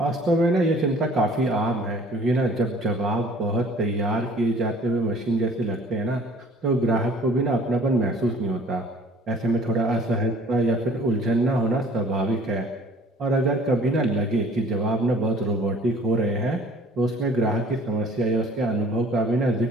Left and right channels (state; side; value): normal; both; correlation 0.52